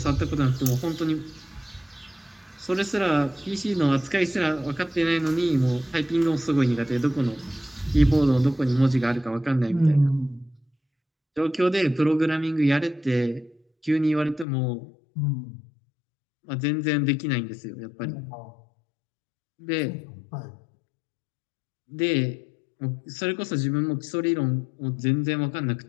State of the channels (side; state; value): right; drops out; at 14.5 s